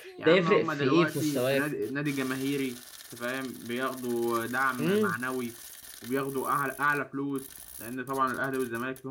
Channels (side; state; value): both; identical; correlation 1.00